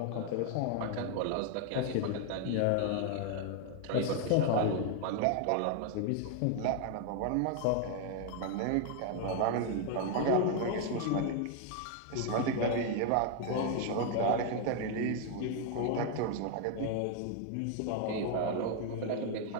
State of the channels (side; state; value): both; different; correlation 0.00